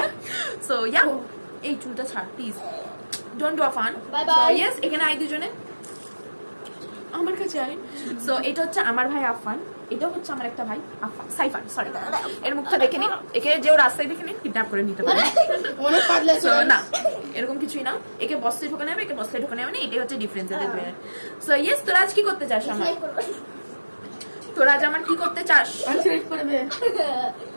সো ইয়া, এই চুলটা ছাড় please, don't do a fun. So yes, এখানে আই দুজনে আমার কাছে আই। সো এটা হচ্ছে আমার ভাই আফান, এটা হচ্ছে আমার একটা ভাই আফান, সাইফান, সরি। এর মুখটা দেখে নিন, একে যে রাস্তায় দেখে নিন কিডন্যাপ করে নিতে পারে। না, এরকম কিছুই না। একে বস্তে ঢোকানো হবে, একে বস্তে ঢোকানো হবে না, এটাই হচ্ছে ডিফারেন্স এদের দুজনের। সো ইয়েস, তোরা আজ কি করতে চাস? তোরা আজ আমার কি করতে চাস?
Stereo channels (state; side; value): inverted; both; correlation -1.00